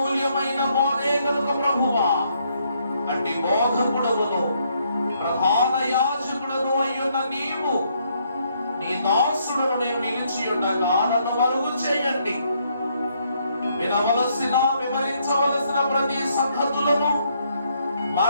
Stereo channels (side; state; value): both; inverted; correlation -0.72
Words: బోధే కనుక ప్రభువా, అట్టి బోధకుడవును ప్రధాన యాజకుడను అయ్యున్న నీవు నీ దాసుడును నేను నిలిచి ఉండగా నన్ను మరుగు చేయండి. వినవలసిన వివరించవలసిన ప్రతి సంగతులను